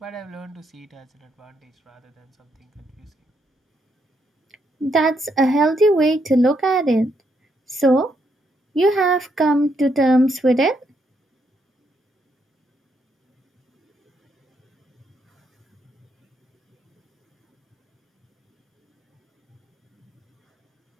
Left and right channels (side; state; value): both; normal; correlation 0.76